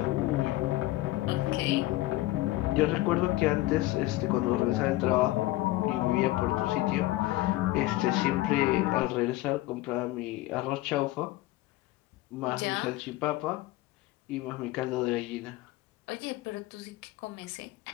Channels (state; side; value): quieter; right; 17.7 dB